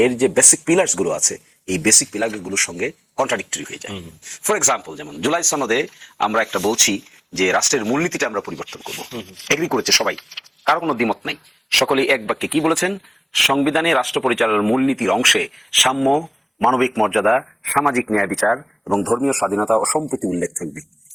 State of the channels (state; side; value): identical; both; correlation 1.00